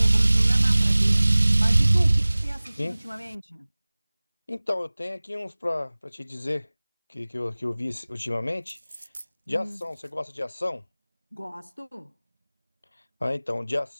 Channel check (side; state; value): both; inverted; correlation -0.99